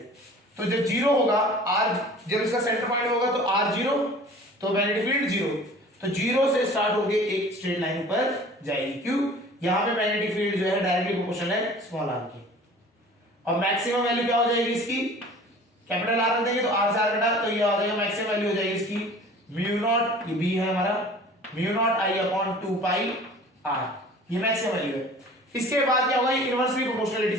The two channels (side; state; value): both; normal; correlation 0.45